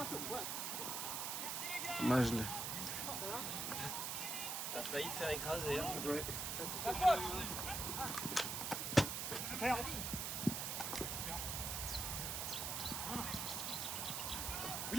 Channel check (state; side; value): noise; right; hiss, 1 dB below the sound